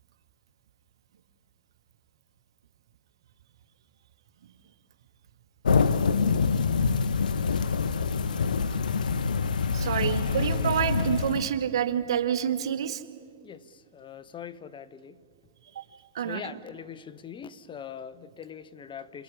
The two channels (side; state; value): both; inverted; correlation -0.65